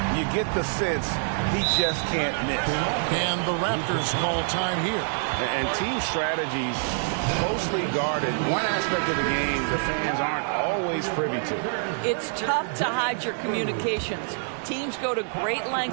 You get the sense he just can't miss. And the Raptors call time here. And team strategies closely guarded. One aspect of the game the fans aren't always privy to. It's tough to hide your communications. Teams go to great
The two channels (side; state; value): left; silent; 61 dB below the other